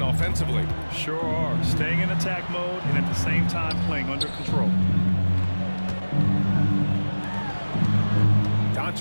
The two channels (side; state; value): both; inverted; correlation -1.00